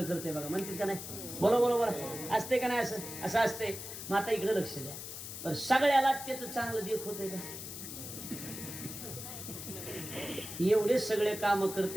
करते बघा म्हणतात का नाही. बरोबर असते का नाही असं असते. मग आता इकडे लक्ष द्या पण सगळ्याला त्याचं चांगलं देख होतंय का एवढे सगळे काम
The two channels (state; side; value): noise; left; hiss, 9 dB below the sound